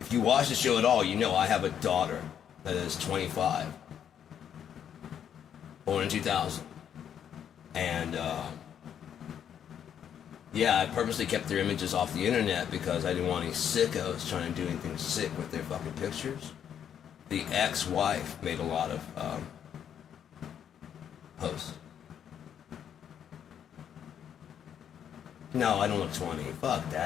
If you watch the show at all, you know I have a daughter that is 25. Born in 2000. And, yeah, I purposely kept their images off the internet because I didn't want any sickos trying to do anything sick with their fucking pictures. The ex-wife made a lot of posts. No, I don't look 20. Fuck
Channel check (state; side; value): quieter; right; 8.9 dB